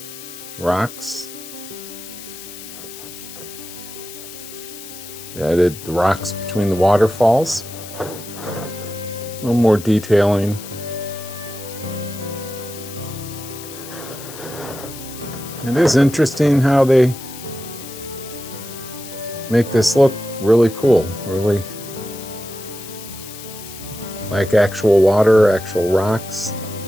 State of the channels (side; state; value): left; noise; hiss, 14 dB below the sound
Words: rocks. They added the rocks between the waterfalls, a little more detailing. It is interesting how they make this look really cool, really like actual water, actual rocks.